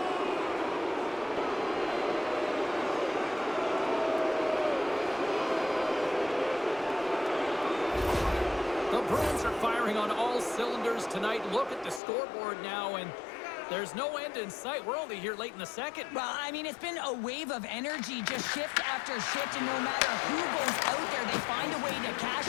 The Bruins are firing on all cylinders tonight. Look at the scoreboard now, and there's no end in sight. We're only here late in the second. Well, I mean, it's been a wave of energy, just shift after shift, and no matter who goes out there, they find a way to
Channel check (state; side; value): drops out; right; at 12.0 s